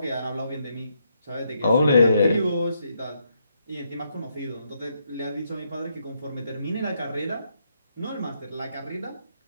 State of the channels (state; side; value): inverted; both; correlation -0.77